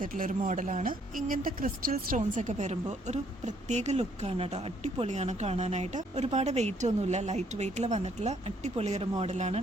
ഒരു മോഡലാണ്. ഇങ്ങനത്തെ ക്രിസ്റ്റൽ സ്റ്റോൺസ് ഒക്കെ വരുമ്പോൾ ഒരു പ്രത്യേക ലുക്കാണ് കേട്ടോ. അടിപൊളിയാണ് കാണാനായിട്ട്. ഒരുപാട് വെയിറ്റ് ഒന്നുമില്ല, ലൈറ്റ് വെയിറ്റിൽ വന്നിട്ടുള്ള അടിപൊളി ഒരു മോഡലാണ്.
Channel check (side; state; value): both; normal; correlation 0.67